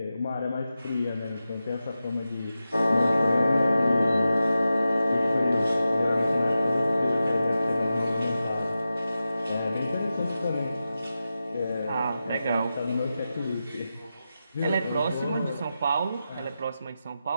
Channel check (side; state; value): both; inverted; correlation -0.92